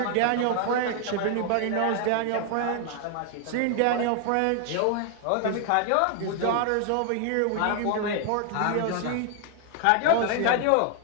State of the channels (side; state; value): both; different; correlation 0.00